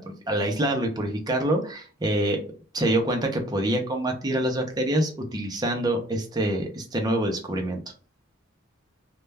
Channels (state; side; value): normal; both; correlation 0.54